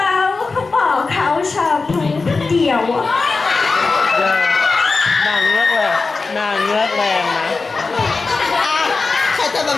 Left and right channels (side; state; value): right; quieter; 4.1 dB